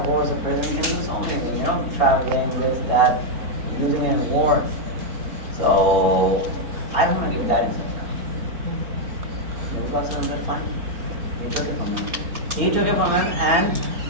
horse a person can do so many things, traveling, this, that, using it in war. So I don't want to give that in sadaqah. Nabi Pak sallallahu alaihi wasallam said, fine. He took it from him. He took it from him, and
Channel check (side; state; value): left; late; 4.2 ms